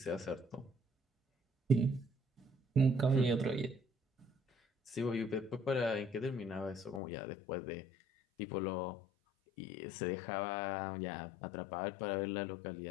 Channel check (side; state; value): right; drops out; at 7.0 s